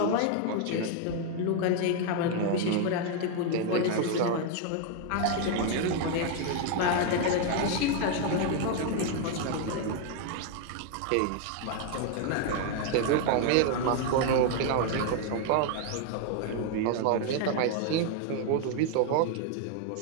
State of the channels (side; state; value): both; different; correlation 0.01